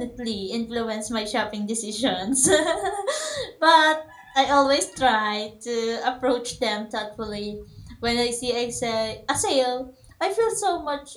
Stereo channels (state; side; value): identical; both; correlation 1.00